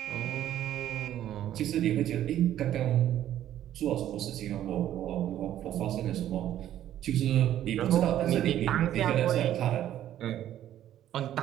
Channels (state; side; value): quieter; left; 11.9 dB